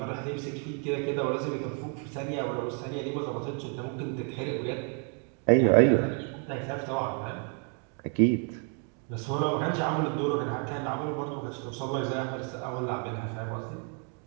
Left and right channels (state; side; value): quieter; left; 37.6 dB